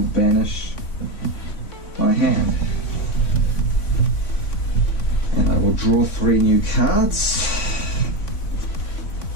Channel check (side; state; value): right; late; 3.5 ms